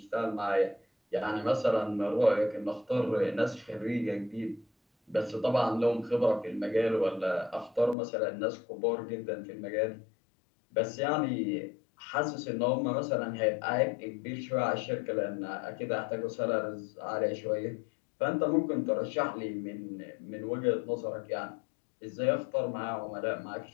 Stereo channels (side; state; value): right; drops out; at 8.0 s